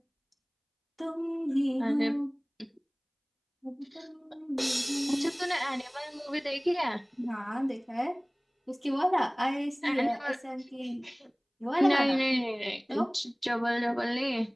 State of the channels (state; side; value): identical; both; correlation 1.00